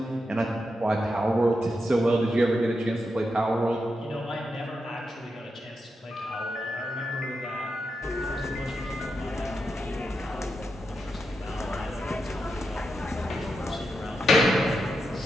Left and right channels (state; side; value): normal; both; correlation 0.86